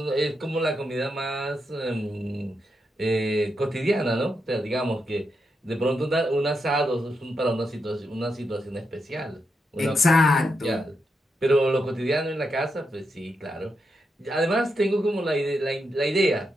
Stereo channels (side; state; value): both; normal; correlation 0.84